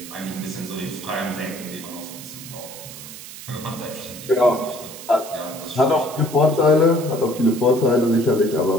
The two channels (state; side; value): noise; right; hiss, 14 dB below the sound